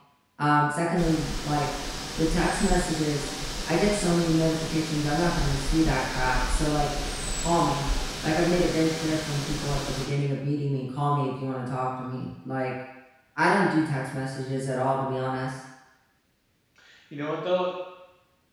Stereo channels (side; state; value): both; identical; correlation 1.00